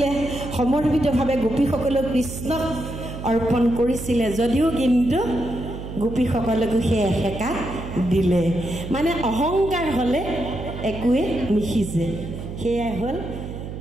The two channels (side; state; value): right; noise; hum, 9 dB below the sound